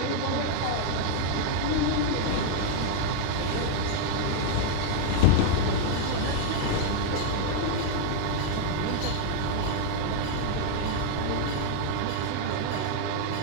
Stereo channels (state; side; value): different; both; correlation 0.00